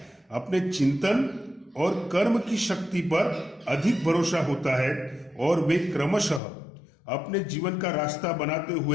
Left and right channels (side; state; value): right; drops out; at 6.4 s